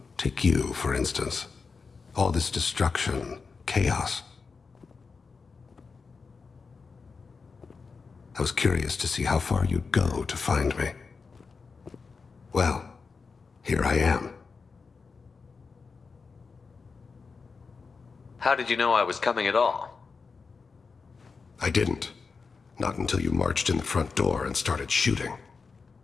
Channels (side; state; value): right; quieter; 4.8 dB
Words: Take you, for instance. All this destruction, chaos. I was curious to see how far you'd go to find me. Well, here I am. How did you know I was coming at all? I didn't. Not until you marched in the front door and started shooting.